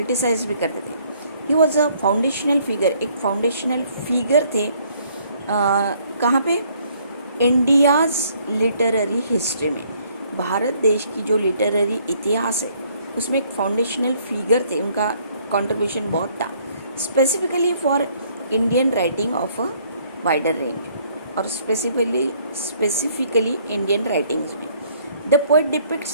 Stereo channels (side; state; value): both; inverted; correlation -0.64